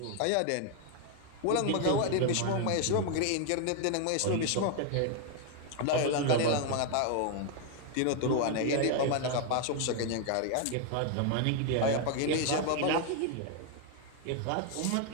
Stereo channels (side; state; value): both; different; correlation 0.00